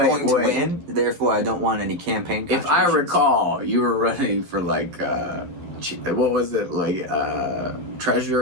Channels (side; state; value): left; late; 11 ms